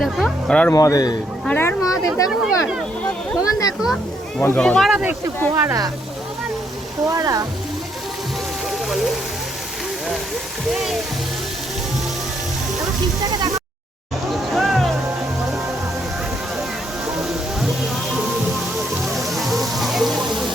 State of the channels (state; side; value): normal; both; correlation 0.73